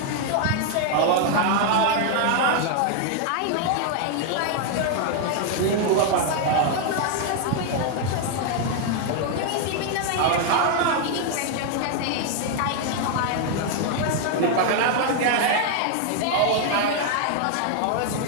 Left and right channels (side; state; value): both; different; correlation 0.00